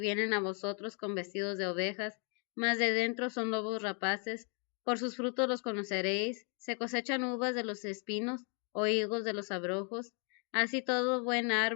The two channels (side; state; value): right; quieter; 39.2 dB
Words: a vosotros con vestidos de ovejas, mas de dentro son lobos rapaces. Por sus frutos los conoceréis. Se cosechan uvas de los espinos o higos de los abrojos. Así todo buen